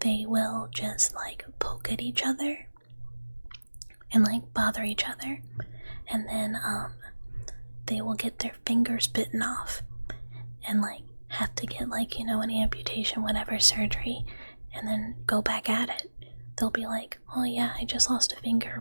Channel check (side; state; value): both; inverted; correlation -1.00